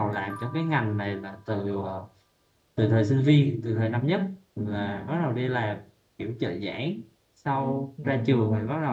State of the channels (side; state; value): both; identical; correlation 1.00